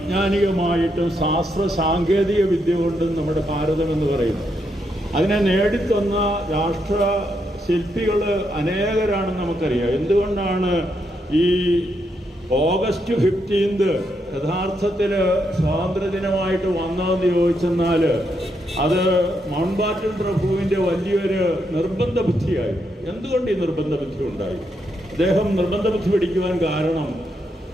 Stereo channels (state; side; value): normal; both; correlation 0.79